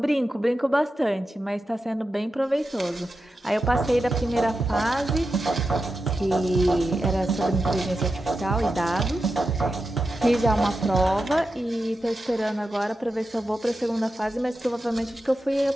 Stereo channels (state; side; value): normal; both; correlation 0.90